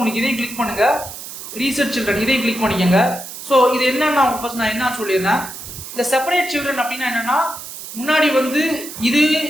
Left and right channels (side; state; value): right; noise; hiss, 11 dB below the sound